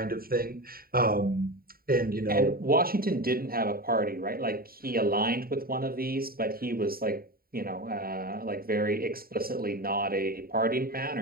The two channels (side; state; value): left; late; 0.43 ms